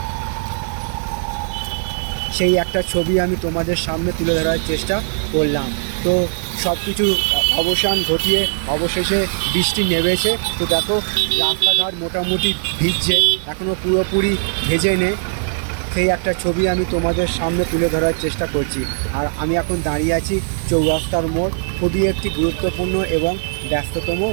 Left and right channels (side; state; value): left; silent; digital silence